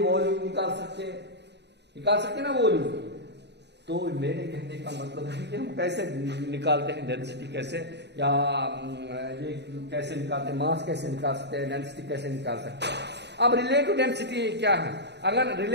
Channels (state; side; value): late; left; 0.50 ms